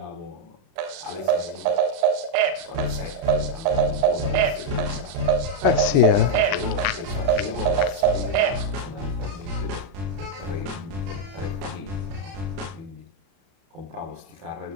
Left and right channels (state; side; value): late; left; 30 ms